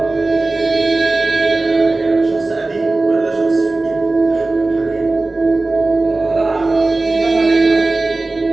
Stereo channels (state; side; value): quieter; left; 3.2 dB